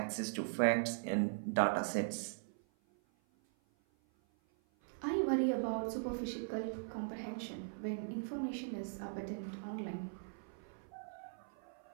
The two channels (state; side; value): silent; left; 51 dB below the other